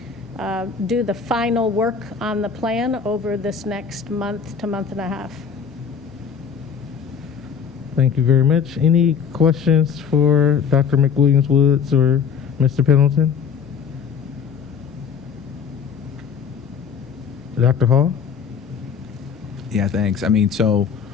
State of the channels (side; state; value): right; quieter; 6.7 dB